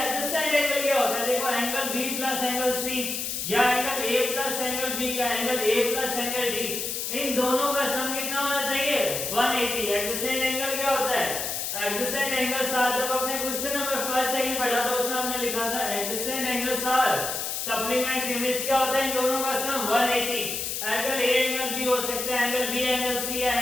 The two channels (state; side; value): noise; left; hiss, 3 dB below the sound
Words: एंगल क्या होता है, देखो angle B plus angle C या angle A plus angle B या angle A plus angle D, इन दोनों का सम कितना होना चाहिए 180। एडजेसेंट एंगल क्या होता है, एडजेसेंट एंगल्स आर, जब अपने क्वेश्चन नंबर फर्स्ट सेकंड पढ़ा था उसमें हमने लिखा था adjacent angles are supplementary, means क्या होता है इन दोनों का sum 180। Angle A angle B हो सकता है, एंगल बी एंगल सी या